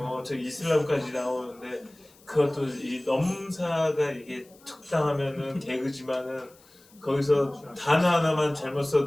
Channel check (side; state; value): left; noise; hiss, 28 dB below the sound